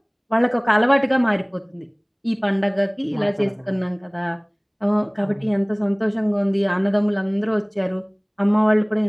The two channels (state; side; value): identical; both; correlation 1.00